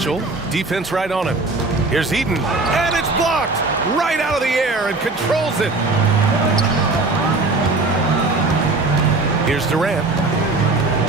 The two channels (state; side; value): quieter; left; 3.4 dB